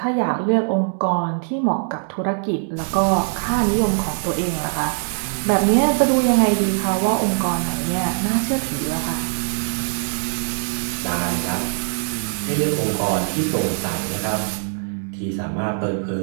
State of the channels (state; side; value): silent; left; digital silence